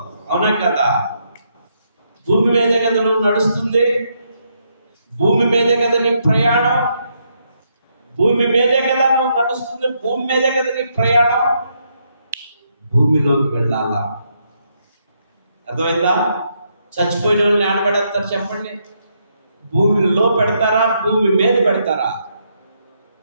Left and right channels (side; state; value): both; inverted; correlation -0.77